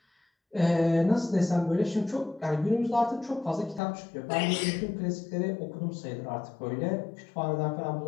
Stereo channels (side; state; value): right; drops out; at 3.8 s